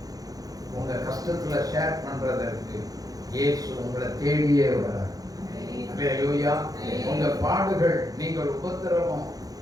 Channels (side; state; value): left; late; 0.18 ms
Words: உங்க கஷ்டத்துல ஷேர் பண்றதற்கு இயேசு உங்களை தேடியே வரார். அல்லேலூயா. உங்க பாடுகள், நீங்கள் உபத்திரவம்,